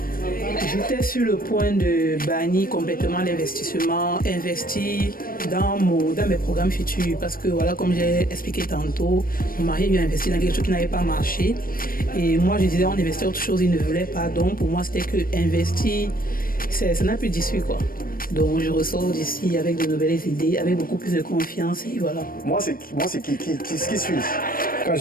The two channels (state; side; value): late; right; 0.41 ms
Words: j'étais sur le point de bannir complètement l'investissement, investir dans mes programmes futurs parce que voilà, comme j'ai expliqué tantôt, mon mari lui a investi dans quelque chose qui n'avait pas marché et moi je disais on investit autre chose, il ne voulait pas, donc pour moi c'était que investir, ça n'a plus d'issue quoi. Donc je ressors d'ici avec de nouvelles idées, avec beaucoup plus de confiance et voilà. Moi c'est qui suis. Quand je